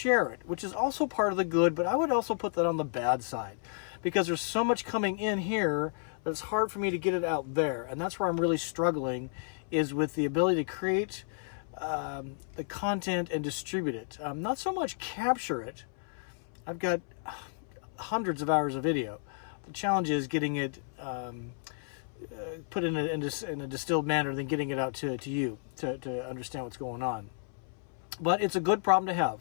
it, which is also part of the good, but I would also put that on the bad side, because there's so much coming in here that it's hard for me to get it out there. And that's where I'm really struggling, is with the ability to create the content and distribute it. Not so much capture it. I've got hundreds of hours of video. The challenge is getting it put in a distilled manner, then getting it out to you to understand what's going on. But it's a good problem to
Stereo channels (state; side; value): silent; right; 56 dB below the other